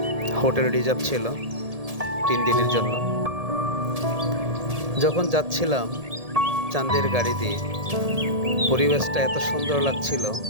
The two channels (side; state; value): left; late; 1.7 ms